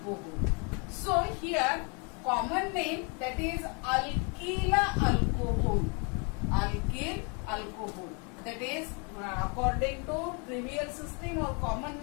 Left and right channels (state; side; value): quieter; right; 34.7 dB